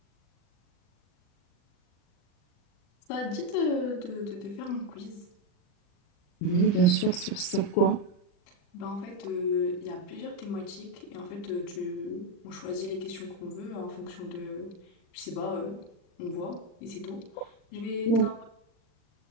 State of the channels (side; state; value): right; late; 39 ms